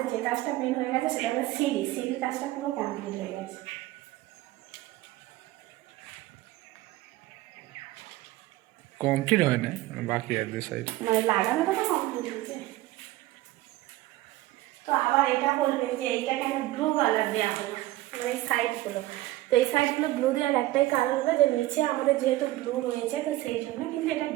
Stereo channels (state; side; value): quieter; left; 16.9 dB